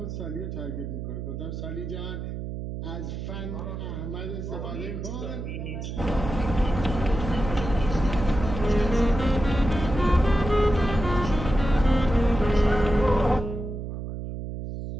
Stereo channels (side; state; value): right; noise; hum, 6 dB below the sound